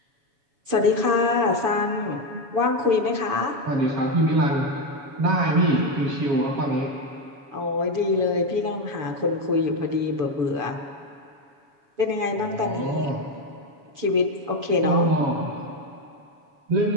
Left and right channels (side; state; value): left; late; 6.9 ms